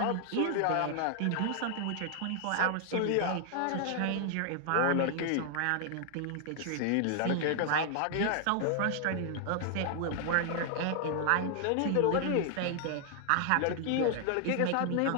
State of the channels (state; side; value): different; both; correlation 0.00